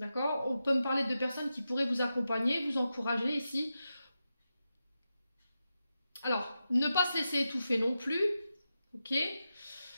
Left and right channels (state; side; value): inverted; both; correlation -0.90